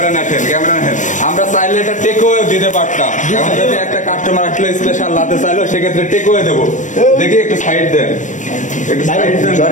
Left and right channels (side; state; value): right; late; 0.36 ms